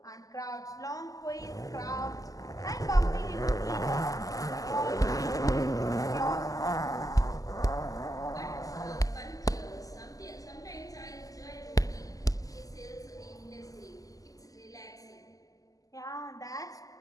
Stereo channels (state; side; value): late; right; 0.17 ms